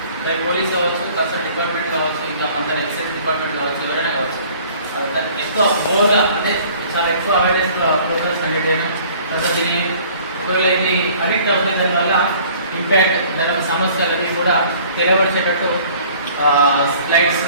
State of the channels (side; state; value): both; inverted; correlation -0.52